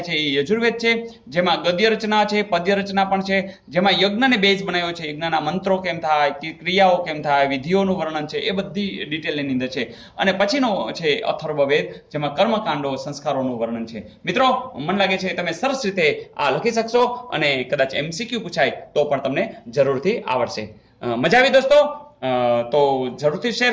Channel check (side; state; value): both; identical; correlation 1.00